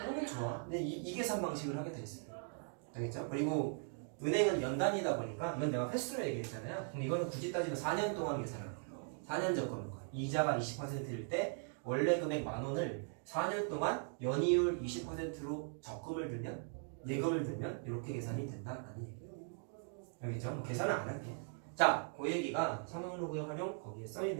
게 좋아. 근데 이 계산 방식을 하게 돼 있어요. 알겠죠? 그리고 은행은 연단이다 보니까 이건 내가 횟수로 얘기했잖아요. 그럼 이거는 굳이 따지면 4년 동안 계산하는 거예요. 4년 적금인 거예요. 이자가 20%일 때 원래 금액 10,000원을 4년 동안 연이율 20%로 적금을 들면 예금을 들면 이렇게 계산이 된다라는 얘기예요. 알겠죠? 뭐 계산은 안 할게. 자, 그 얘기가 상용로그의 활용 거기에 써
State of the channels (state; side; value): silent; left; 51 dB below the other